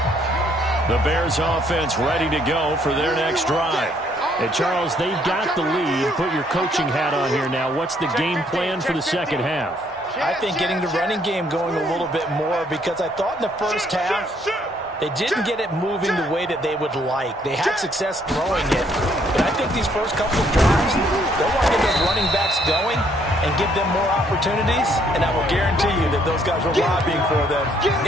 The Bears offense ready to go for their next drive. Hey, Charles, they've got the lead. Put your coaching hat on here now. What's the game plan for the second half? I think getting the running game going a little bit more because I thought in the first half They didn't get it moving the way that they would like. They had success throwing it. But I think these first couple of drives, they'll want to get those running backs going and give them more opportunities. And I will guarantee you that those guys were lobbying for them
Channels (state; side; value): normal; both; correlation 0.67